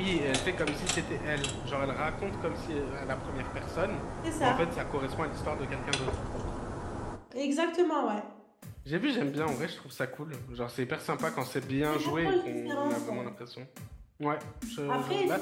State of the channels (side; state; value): both; identical; correlation 1.00